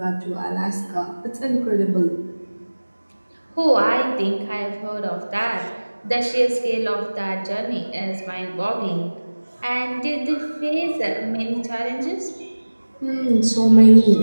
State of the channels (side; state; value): both; inverted; correlation -1.00